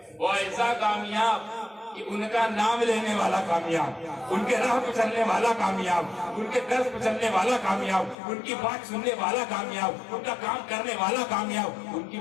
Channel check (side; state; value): right; drops out; at 8.2 s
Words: وہ ایسا کامیاب کہ ان کا نام لینے والا کامیاب، ان کے راہ پہ چلنے والا کامیاب، ان کے درس پہ چلنے والا کامیاب، ان کی بات سننے والا کامیاب، ان کا کام کرنے والا کامیاب، ان کی